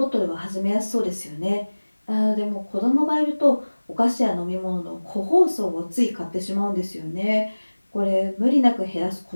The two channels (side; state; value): both; inverted; correlation -1.00